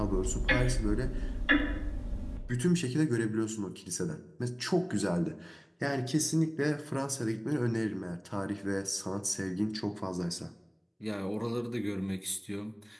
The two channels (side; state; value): both; identical; correlation 1.00